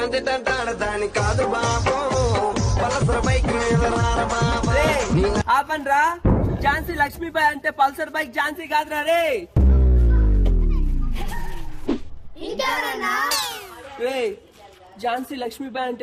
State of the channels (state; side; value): identical; both; correlation 1.00